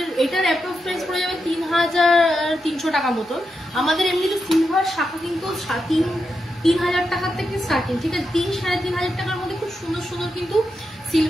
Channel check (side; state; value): both; normal; correlation 0.86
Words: এটার অ্যাপ্রক্স প্রাইস পড়ে যাবে 3300 টাকা মতো। আমাদের এমনিতে সিলভার শাখা কিন্তু 3000 টাকার থেকে স্টার্টিং, ঠিক আছে। 3-3500 টাকার মধ্যে খুব সুন্দর সুন্দর কিন্তু